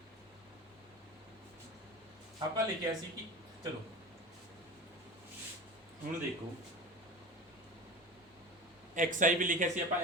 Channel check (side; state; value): both; normal; correlation 0.32